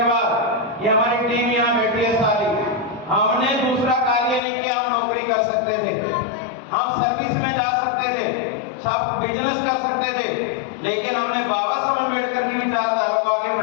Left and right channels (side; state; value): right; drops out; at 4.4 s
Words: बाद, ये हमारी टीम यहाँ बैठी है सारी, हमने दूसरा कार्य नहीं किया। हम नौकरी कर सकते थे, हम सर्विस में जा सकते थे, सब बिजनेस कर सकते थे, लेकिन हमने बाबा साहब अम्बेडकर की विचारधारा को आगे